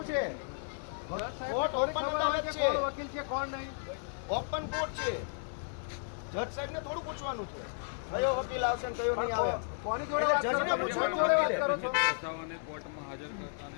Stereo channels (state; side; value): silent; right; 55 dB below the other